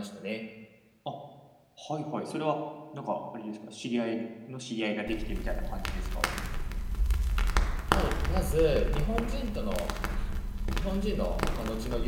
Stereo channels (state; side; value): identical; both; correlation 1.00